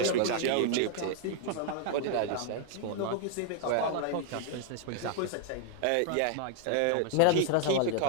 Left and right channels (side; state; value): both; different; correlation 0.00